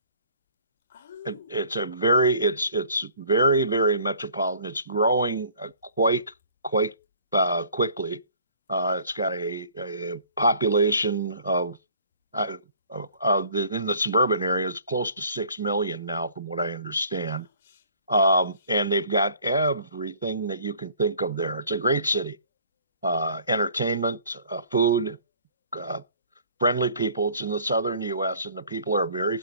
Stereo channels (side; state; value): both; inverted; correlation -0.53